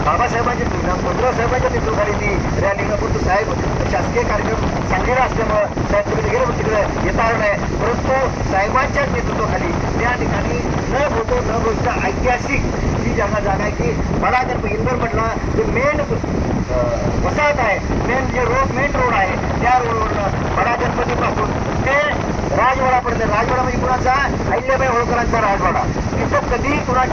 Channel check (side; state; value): both; identical; correlation 1.00